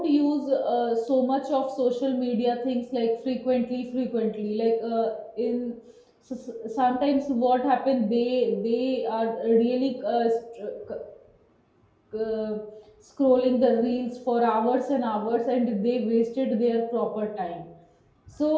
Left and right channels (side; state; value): both; identical; correlation 1.00